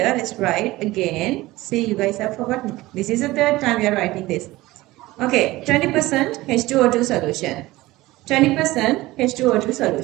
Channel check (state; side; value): quieter; left; 18.6 dB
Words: Let's write again. See, you guys have forgotten. This is the third time we are writing this. Okay, 20% H2O2 solution. 20% H2O2